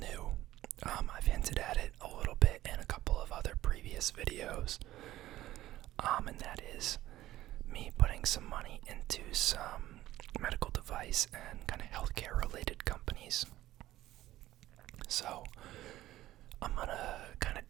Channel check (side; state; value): left; quieter; 14.9 dB